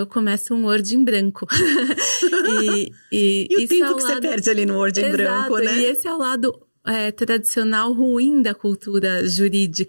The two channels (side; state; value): both; inverted; correlation -1.00